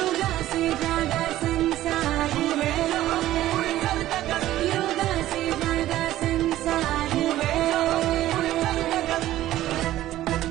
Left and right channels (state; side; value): quieter; left; 14.3 dB